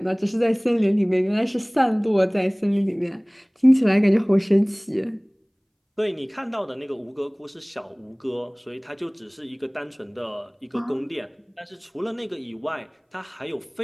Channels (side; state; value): both; identical; correlation 1.00